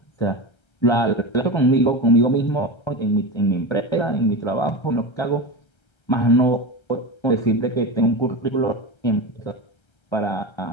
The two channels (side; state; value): right; late; 1.3 ms